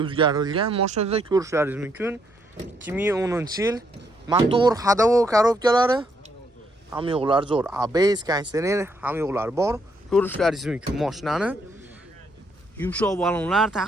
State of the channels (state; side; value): normal; both; correlation 0.73